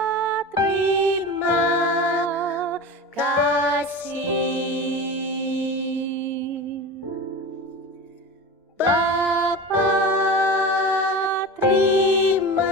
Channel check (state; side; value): normal; both; correlation 0.29